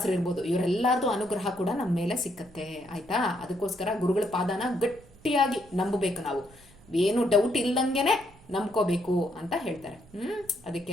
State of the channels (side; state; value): right; noise; rumble, 25 dB below the sound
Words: ಇರ್ಬೋದು, ಇವರೆಲ್ಲರದು ಅನುಗ್ರಹ ಕೂಡ ನಮ್ಮ ಮೇಲೆ ಸಿಕ್ಕತ್ತೆ ಆಯ್ತಾ. ಅದಕ್ಕೋಸ್ಕರ ಗುರುಗಳ ಪಾದನ ಗಟ್ಟಿಯಾಗಿ ನಂಬಬೇಕು ನಾವು, ಏನು ಡೌಟ್ ಇಲ್ದಂಗೆನೆ ನಂಬ್ಕೋಬೇಕು ಅಂತ ಹೇಳ್ತಾರೆ.